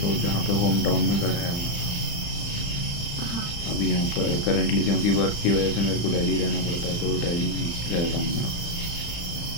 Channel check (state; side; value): late; right; 35 ms